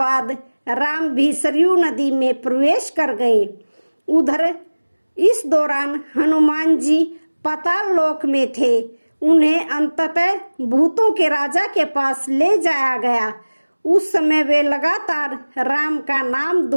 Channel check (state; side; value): inverted; both; correlation -1.00